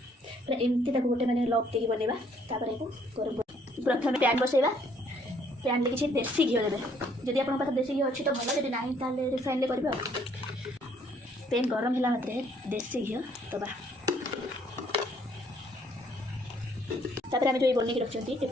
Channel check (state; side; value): normal; both; correlation 0.65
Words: एमती ताको गोटे मैंने लॉक देकी बनवा तापर को गरम प्रथम पैन बसैवा पैन ले किसी देसी घी देवे जदि आप पाखे देसी घी अच्छी तो भल जब ना ताले रिफाइन ले करेंगे पैन गरम है मात्रे देसी घी दबा तापर आम जो बनिक रखी